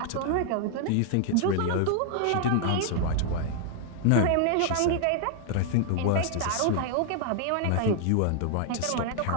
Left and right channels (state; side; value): different; both; correlation 0.00